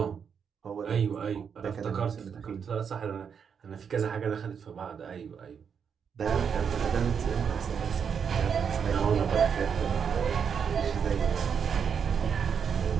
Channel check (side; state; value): left; quieter; 7.0 dB